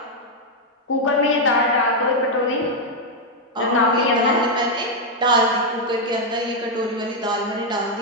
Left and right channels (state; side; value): normal; both; correlation 0.00